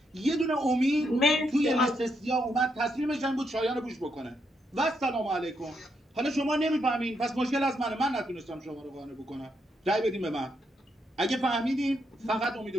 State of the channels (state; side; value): normal; both; correlation 0.78